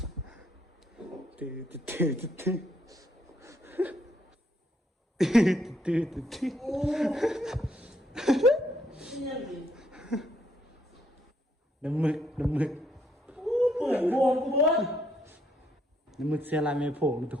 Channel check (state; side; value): normal; both; correlation 0.72